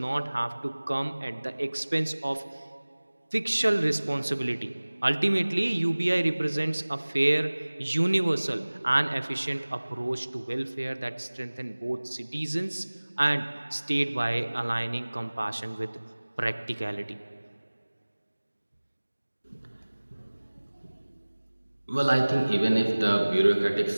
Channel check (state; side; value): inverted; both; correlation -1.00